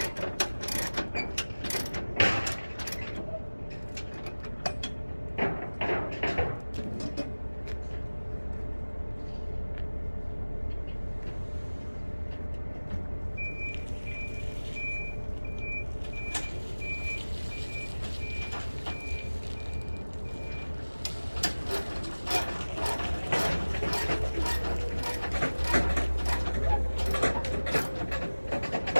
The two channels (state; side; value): inverted; both; correlation -1.00